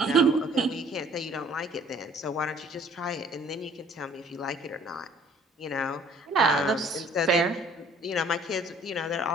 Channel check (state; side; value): normal; both; correlation 0.55